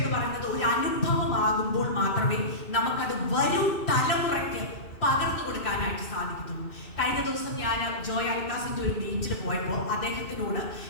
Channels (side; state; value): right; late; 2.6 ms